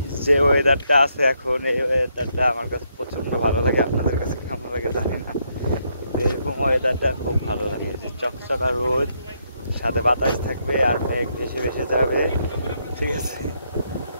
যে ওয়েদারটা আছে এখন এই ওয়েদারটা আমার কাছে প্রচন্ড ভালো লাগে আপনাদের কাছে কেমন লাগে জানি না এরকম ওয়েদারটা খুব ভালো লাগে যে চকচকা রোদ সাথে বাতাস থাকবে আর মেঘ ভেসে ভেসে যাবে ঠিক আছে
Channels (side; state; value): both; inverted; correlation -0.76